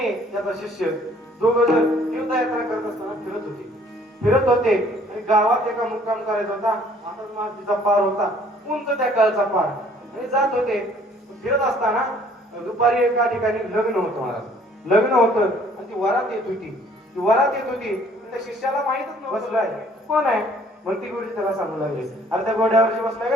त्याचा शिष्य दोघं जण तीर्थयात्रा करत असताना फिरत होते आणि गावात एका मुक्काम करायचा होता. आता मातीचा पार होता, उंच त्या काळचा पार, आणि जात होते. फिरत असताना दुपारी एका ठिकाणी लग्न होतं महाराज. लग्न होतं आणि ती वरात येत होती. ती वरात येत होती. त्या शिष्याला माहितच नव्हतं बसलाय कोण आहे. मग ती गोष्ट त्याला सांगू लागली, अरे त्या घोड्यावरची बसलाय का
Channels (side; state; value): both; normal; correlation 0.58